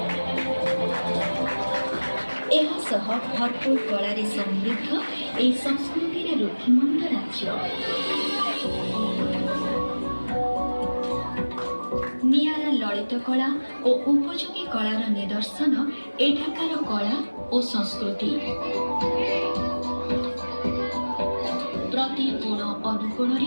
ଏହା ସହ ଭରପୁର କଳାରେ ସମୃଦ୍ଧ ଏହି ସଂସ୍କୃତିରେ ରୁଦ୍ଧିମନ୍ତ ରାଜ୍ୟ। ନିଆରା ଲଳିତ କଳା ଓ ଉପଯୋଗୀ କଳାର ନିଦର୍ଶନ ଏଠାକାର କଳା ଓ ସଂସ୍କୃତି। ପ୍ରତି କୋଣ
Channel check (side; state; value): both; inverted; correlation -1.00